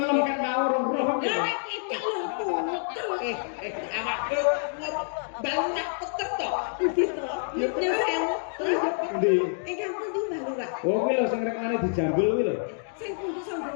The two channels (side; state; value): right; silent; 60 dB below the other